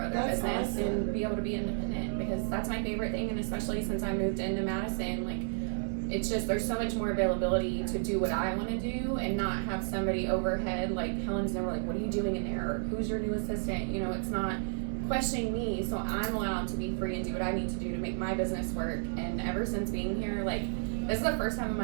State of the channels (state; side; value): silent; left; digital silence